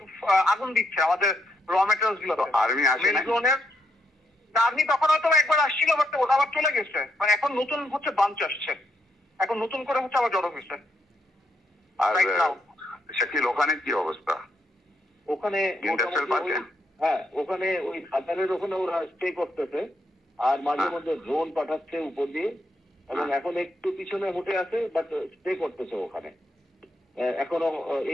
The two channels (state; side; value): normal; both; correlation 0.78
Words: আগুন দিচ্ছে আমাদের র মেটেরিয়ালস গুলো। আর্মি আসে না? আর্মি তখন হয়তো একবার আসছিল, বাট ওটা আবার চলে গেছে। মানে এখন নতুন হচ্ছে বাঞ্চ আসছে, এখন নতুন করে হচ্ছে আবার জড়ো হয়েছে। আর শাকিল ওখানে কি অবস্থা? ওখানে হ্যাঁ, ওখানে ওই খাতারের ওখানে ওরা স্টে করতেছে, আর মাঝে মধ্যে ড্রোন পাঠাচ্ছে উপর দিয়ে, এবং এখন একটু পিছনে উঠে আছে, বাট স্টে করতেছে ওখানে এখনো।